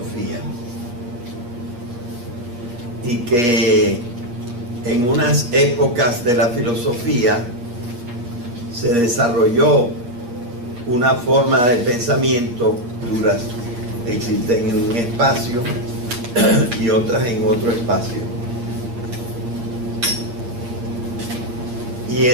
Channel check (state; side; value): late; left; 8.5 ms